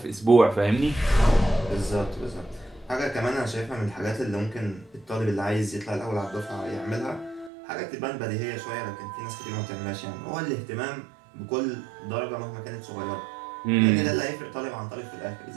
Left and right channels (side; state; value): left; drops out; at 7.5 s